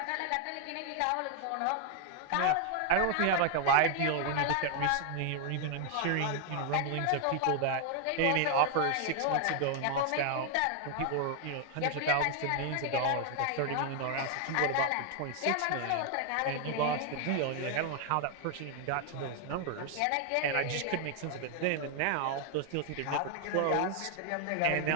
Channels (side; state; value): both; different; correlation 0.00